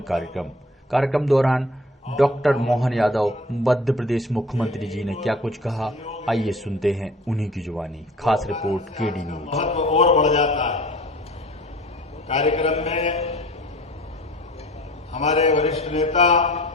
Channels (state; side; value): normal; both; correlation 0.45